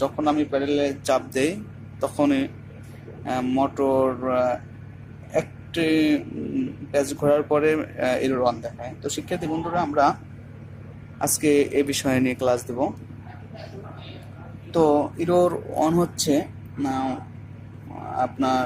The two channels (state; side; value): identical; both; correlation 1.00